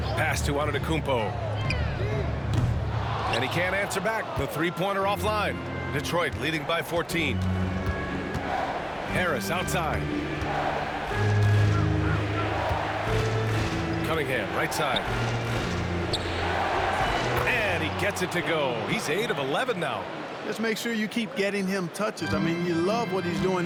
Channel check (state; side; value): identical; both; correlation 1.00